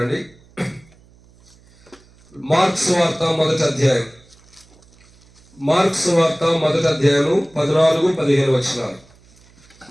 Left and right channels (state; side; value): noise; right; hum, 29 dB below the sound